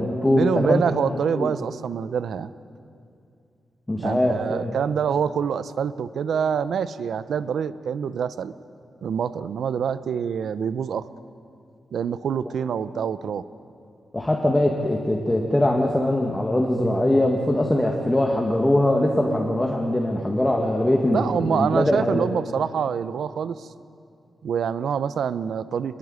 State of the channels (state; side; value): normal; both; correlation 0.87